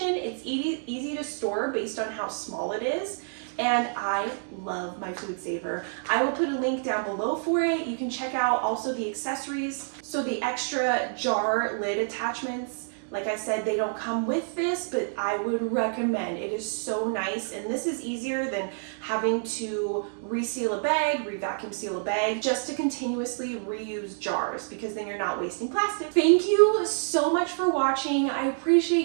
It's easy to store based on how small it is. And I love my food saver. I will put a link down below for it. You can check out also the accessories. So the extra jar lid attachments, like I said, they don't come with this, but I would recommend. It is so nice, and this is easier than having to reseal a bag, re-vacuum seal a bag, just to continuously reuse jars, because then you're not wasting plastic. Thank you so much for watching. I appreciate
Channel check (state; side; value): silent; left; digital silence